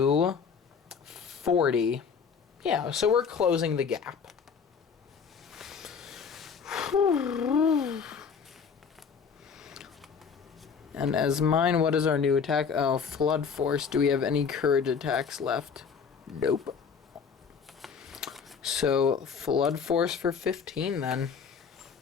40. Yeah, so we're closing the gap. And as mine, what is our new attack? Oh, Flood Force. Do we have any courage attacks left? Nope. So, Flood Force for 15 then.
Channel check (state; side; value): quieter; right; 6.2 dB